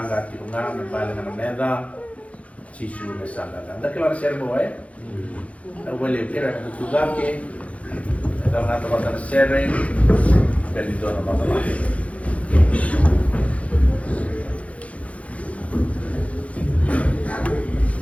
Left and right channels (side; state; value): right; late; 0.065 ms